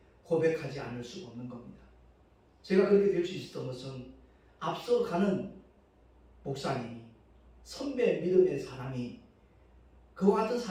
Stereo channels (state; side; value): identical; both; correlation 1.00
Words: 고백하지 않을 수가 없는 겁니다. 제가 그렇게 될 수 있었던 것은 앞서가는 목사님이, 선배 믿음의 사람이 그와 같은